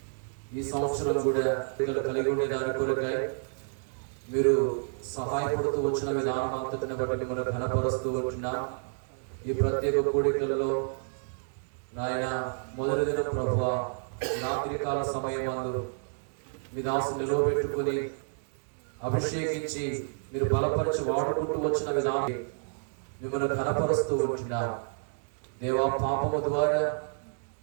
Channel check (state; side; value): silent; left; 58 dB below the other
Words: ఈ సంవత్సరం కూడా కలిగి ఉండే దాని కొరకై మీరు సహాయపడుతూ వచ్చిన విధానం అంతటిని బట్టి మిమ్మల్ని ఘనపరుస్తూ ఉంటున్నాం. ఈ ప్రత్యేక కూడికలలో నాయన మొదటి దిన ప్రభువ రాత్రికాల సమయమందు మీ దాసుని నిలవబెట్టుకుని అభిషేకించి మీరు బలపరిచి వాడుకుంటూ వచ్చిన విధానం మిమ్మల్ని ఘనపరుస్తూ ఉంటున్నాం. దేవా, పాపము ద్వారా